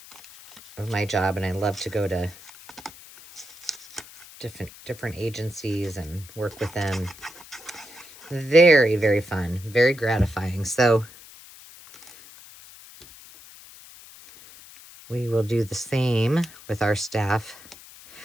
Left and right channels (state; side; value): noise; left; hiss, 20 dB below the sound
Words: my job, and I love to go to different agencies and work with them. Very, very fun, very gratifying. So we will do the same with our staff.